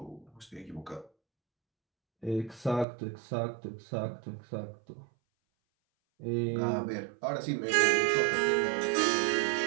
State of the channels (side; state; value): left; drops out; at 2.9 s